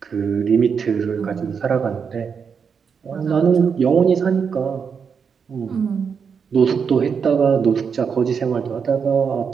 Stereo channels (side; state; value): left; quieter; 6.4 dB